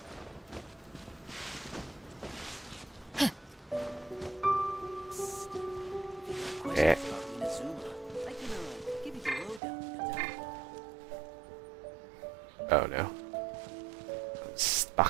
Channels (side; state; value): left; drops out; at 9.6 s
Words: Eh. Oh no. I'm